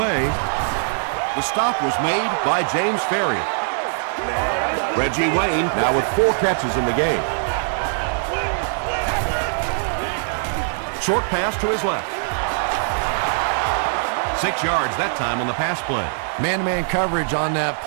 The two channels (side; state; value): left; silent; digital silence